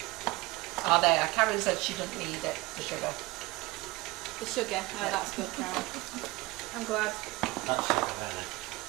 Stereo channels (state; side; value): quieter; left; 21.4 dB